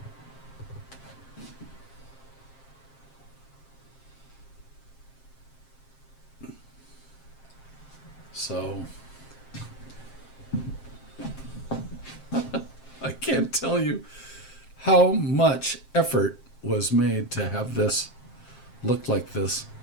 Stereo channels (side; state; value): right; late; 7.5 ms